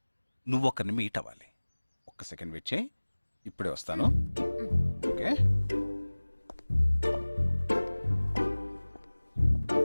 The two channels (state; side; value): inverted; both; correlation -1.00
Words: నువ్వు ఒకరిని మీట్ అవ్వాలి. ఒక్క సెకండ్ వెయిట్ చేయి, ఇప్పుడే వస్తాను. ఓకే.